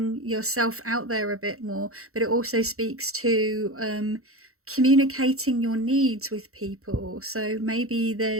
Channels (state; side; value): late; left; 0.63 ms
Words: yourself out there a bit more. But it also speaks to communicating your needs with people. So maybe